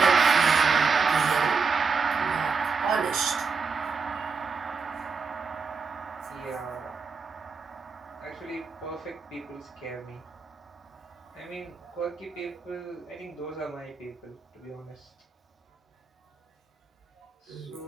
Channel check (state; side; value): quieter; left; 5.0 dB